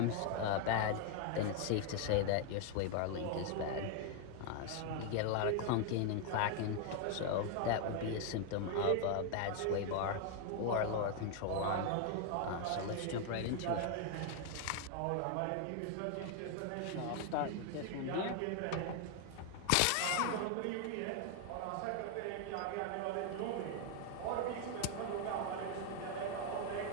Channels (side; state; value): both; different; correlation 0.00